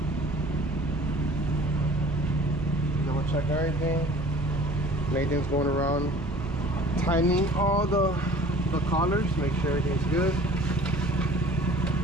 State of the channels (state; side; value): normal; both; correlation 0.48